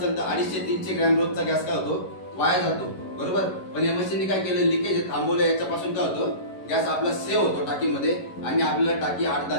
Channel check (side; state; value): right; late; 11 ms